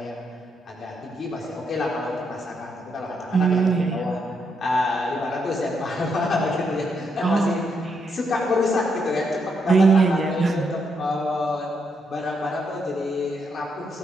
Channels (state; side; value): normal; both; correlation 0.78